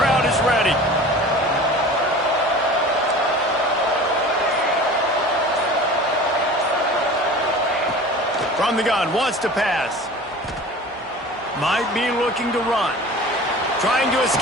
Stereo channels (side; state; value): both; normal; correlation 0.40